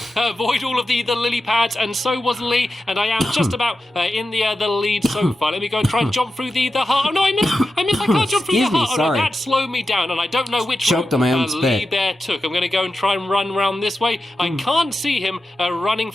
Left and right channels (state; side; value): normal; both; correlation 0.91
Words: avoid all of the lily pads, and so was Lee, and I am just about in the lead so far. Let me go and try and jump through the heart. Oh no, I missed. I can't jump through the heart. Oh no, that slowed me down, and I don't know which route Lee Bear took. I'm going to go and try and run around this way. I can't see him running